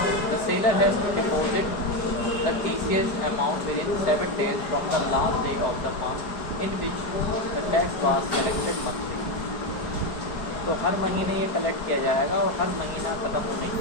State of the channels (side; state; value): right; late; 4.9 ms